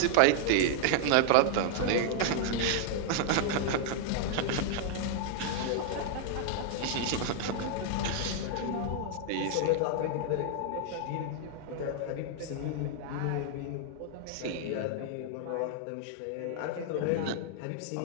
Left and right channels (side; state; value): both; different; correlation -0.01